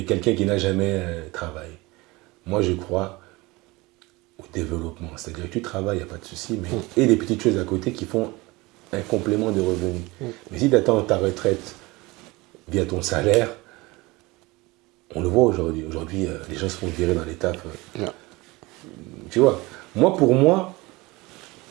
qui n'a jamais travaillé. Moi je crois au développement. C'est-à-dire que tu travailles, il n'y a pas de souci, mais et des petites choses à côté qui font un complément de revenus. Mais si tu attends ta retraite via ton salaire, on le voit aujourd'hui. Aujourd'hui, les gens se font virer dans les tafs. Tu vois, pour moi,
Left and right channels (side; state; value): left; quieter; 22.5 dB